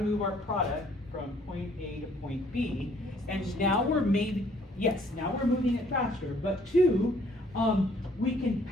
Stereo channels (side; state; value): both; normal; correlation 0.62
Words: move our product from point A to point B, and now we're moving it faster, but two, we can